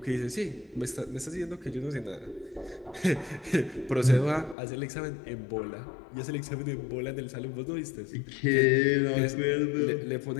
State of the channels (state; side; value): drops out; right; at 4.5 s